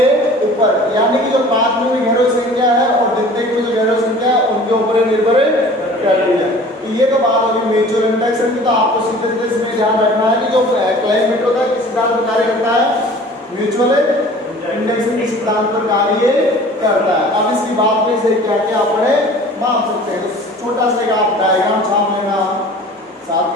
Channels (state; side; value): normal; both; correlation 0.45